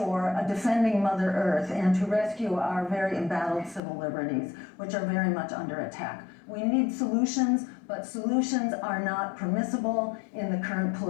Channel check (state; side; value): drops out; right; at 3.8 s